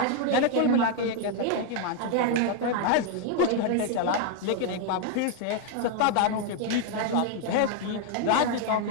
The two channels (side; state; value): both; different; correlation 0.00